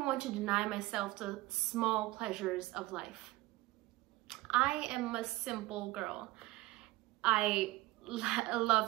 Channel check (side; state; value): left; quieter; 19.2 dB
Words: want to deny myself the small pleasures of life. I am a simple girl. I